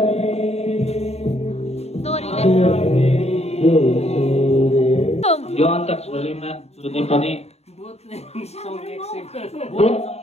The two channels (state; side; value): late; right; 0.31 ms